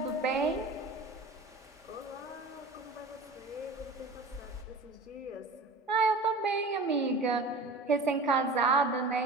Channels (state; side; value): quieter; left; 3.2 dB